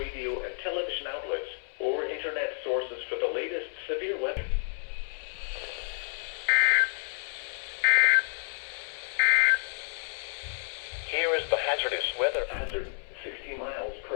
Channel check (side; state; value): right; silent; 58 dB below the other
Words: and television outlets or internet sources for the latest severe weather. Here is the hazardous weather hazard. 60 miles